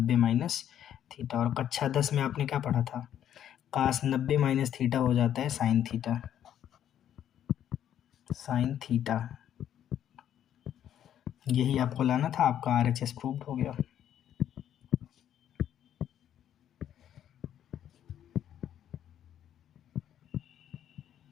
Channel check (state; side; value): quieter; right; 10.4 dB